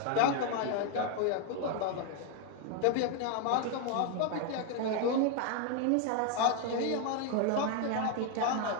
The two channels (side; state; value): both; different; correlation 0.01